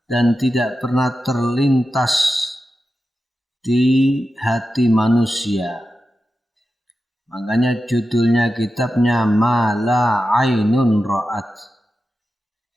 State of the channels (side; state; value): both; normal; correlation 0.91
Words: dan tidak pernah terlintas di hati manusia. Makanya judulnya kitabnya Ma la ainun ra'at.